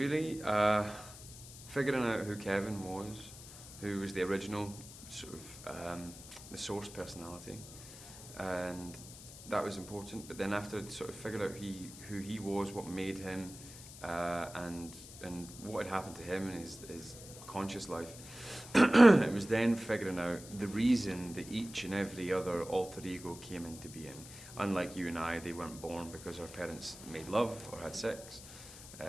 figuring out who Kevin was, who was the original sort of the source personality, and that was important. But then after I'd sort of figured out who he was, what made him, and what had happened to him in his conscious life, it was then figuring out the reason that each and every other alter ego came into being. Unlike you and I, they weren't born because our parents made love or had sex.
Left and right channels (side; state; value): left; noise; hiss, 15 dB below the sound